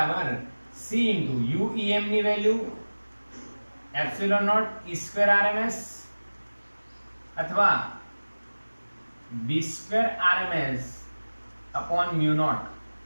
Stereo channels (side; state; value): both; inverted; correlation -1.00